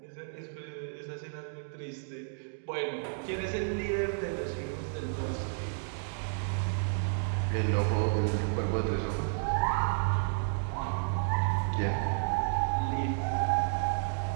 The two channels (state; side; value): silent; left; digital silence